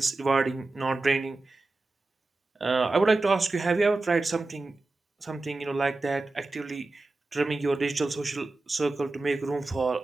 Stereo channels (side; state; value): left; quieter; 3.2 dB